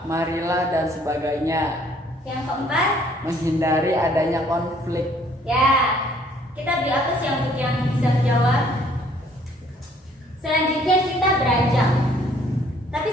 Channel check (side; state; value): both; normal; correlation 0.61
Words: marilah, dan sebagainya. yang keempat. Menghindari adanya konflik. Ya, kita beri apa sih yang bisa menjawab? Selanjutnya kita beranjak. Tapi